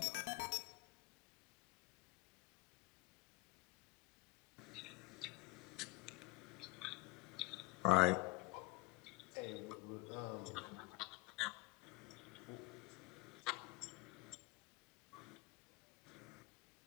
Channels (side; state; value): right; quieter; 23.1 dB